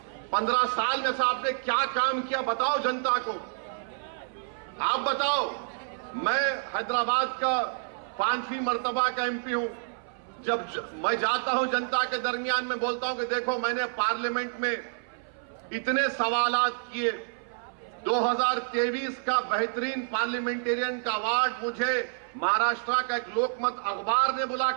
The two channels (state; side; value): silent; left; 57 dB below the other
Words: 15 साल में से आपने क्या काम किया बताओ जनता को, आप बताओ। मैं हैदराबाद का 5वीं मर्तबा का एमपी हूं। जब मैं जाता हूं जनता के दरमियान में बोलता हूं कि देखो मैंने पार्लियामेंट में इतने सवालात किए, 2023 का बेहतरीन पार्लियामेंटेरियन का अवार्ड मुझे महाराष्ट्र का एक लोकमत अखबार ने